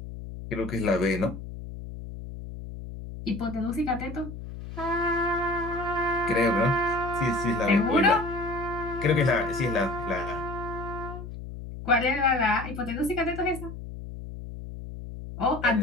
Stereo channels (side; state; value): left; noise; hum, 10 dB below the sound